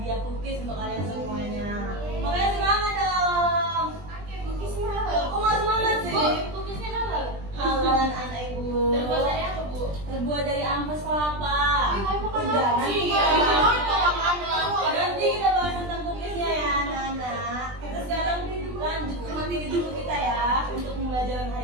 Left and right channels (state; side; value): late; left; 20 ms